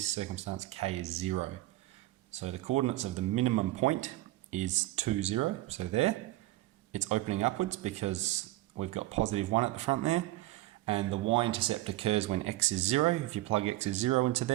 circumstance, k is 0. So the coordinates of the minimum point is 2, 0, so there. It's opening upwards because we've got positive 1 at the front there. And the y-intercept occurs when x is 0. If you plug x is 0 into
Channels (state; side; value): quieter; left; 17.4 dB